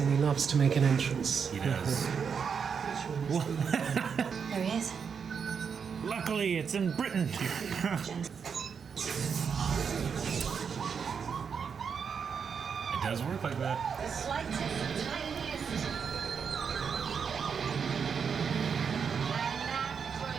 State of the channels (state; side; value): quieter; left; 6.5 dB